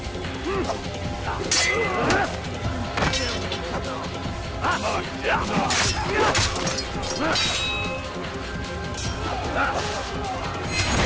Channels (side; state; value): both; identical; correlation 1.00